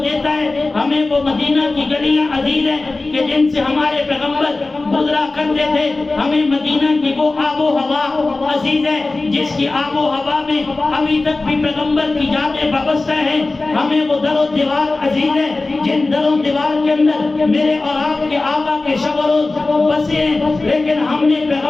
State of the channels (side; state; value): right; quieter; 3.3 dB